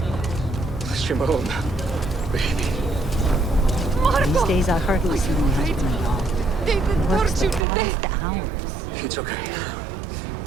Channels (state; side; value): drops out; left; at 7.7 s